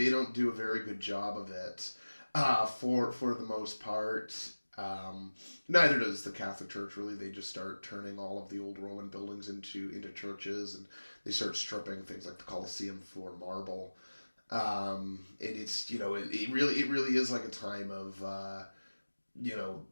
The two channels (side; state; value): both; inverted; correlation -1.00